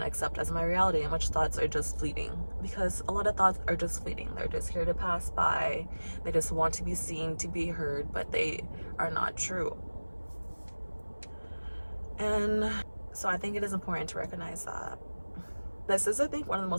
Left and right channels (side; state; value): both; inverted; correlation -1.00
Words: to accept as my reality and which thoughts are just fleeting. Because a lot of thoughts are just fleeting. They're just here to pass by. They just want to be seen, to be heard, but they are not true. And so I think it is important to recognize that. This is, I think, one of the